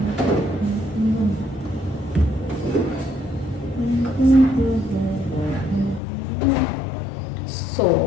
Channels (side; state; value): right; drops out; at 6.0 s